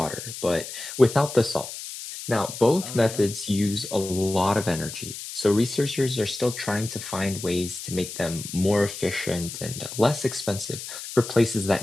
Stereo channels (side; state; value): left; noise; hiss, 10 dB below the sound